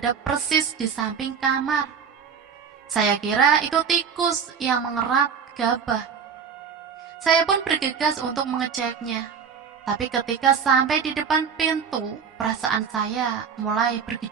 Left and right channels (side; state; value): left; quieter; 6.7 dB